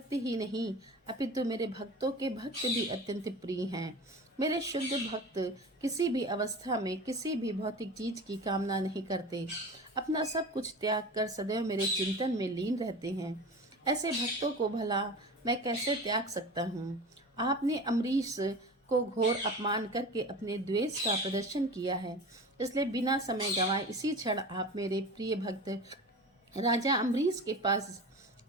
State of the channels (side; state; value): both; normal; correlation 0.33